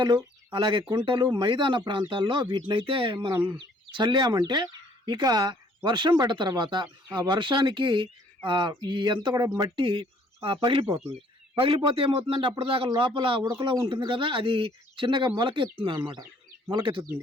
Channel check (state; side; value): normal; both; correlation 0.60